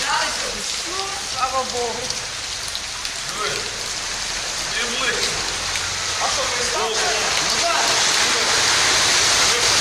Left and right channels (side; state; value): both; identical; correlation 1.00